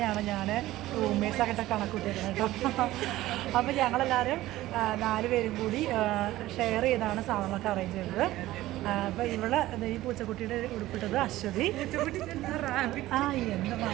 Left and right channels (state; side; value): quieter; left; 16.1 dB